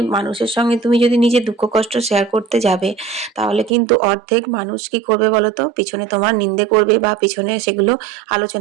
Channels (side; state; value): left; drops out; at 3.7 s